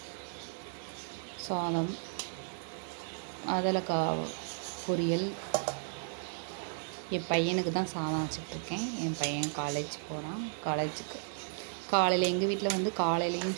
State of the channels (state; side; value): silent; left; digital silence